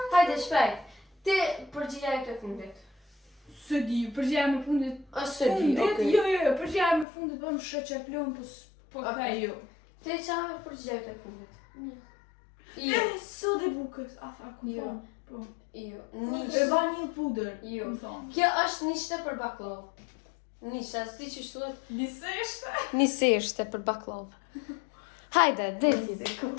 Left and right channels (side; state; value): right; drops out; at 7.1 s